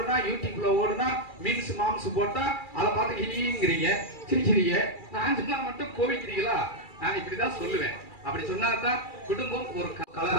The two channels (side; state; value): right; late; 2.3 ms